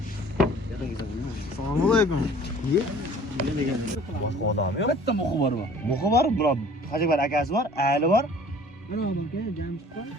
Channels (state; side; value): normal; both; correlation 0.50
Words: Assalomu alaykum. Nima degan? Boshqa odam yo'q. Bitta muxi bor bu. Muxi bor, biroq Hajibal akasi bor, Ali bor. Mana aka, James bor.